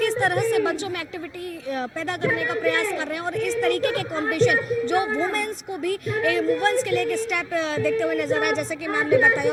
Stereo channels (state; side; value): identical; both; correlation 1.00